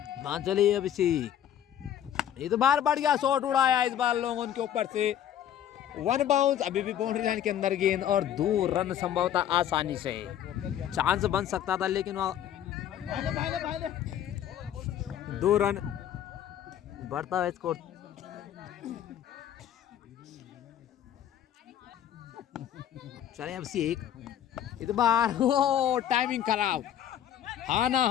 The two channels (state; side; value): quieter; right; 10.6 dB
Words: चलिए अभिषेक, इस बार बढ़िया शॉट उड़ाया इस बार लोगों के ऊपर से। 1 बाउंस, अभी भी बाउंड्री लाइन के अंदर गेंद और 2 रन संभवतः आसानी से। चांस बन सकता था लेकिन 2 रन बढ़ता है स्कोर। चले अभिषेक, इस बार टाइमिंग खराब,